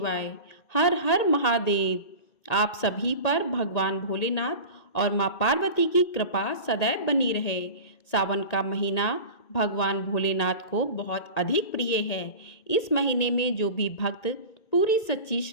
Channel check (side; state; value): right; late; 1.8 ms